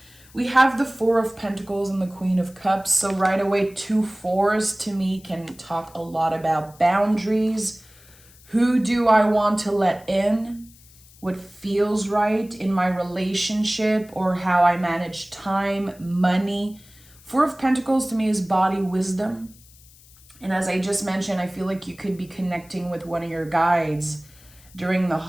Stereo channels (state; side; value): noise; left; hiss, 25 dB below the sound